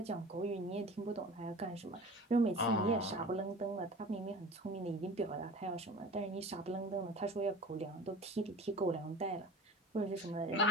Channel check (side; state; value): both; normal; correlation 0.39